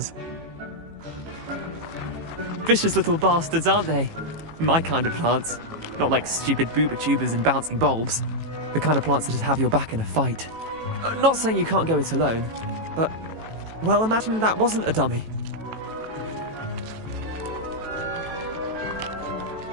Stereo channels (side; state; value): left; late; 18 ms